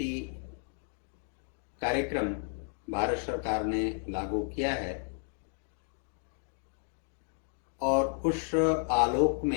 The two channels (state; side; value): silent; right; 56 dB below the other